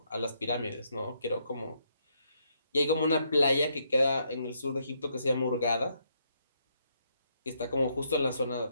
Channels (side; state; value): both; inverted; correlation -0.74